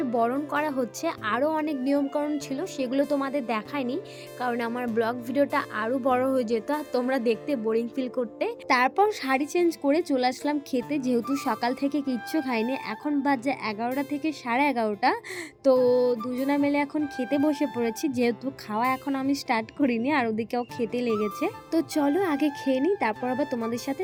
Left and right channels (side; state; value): both; identical; correlation 1.00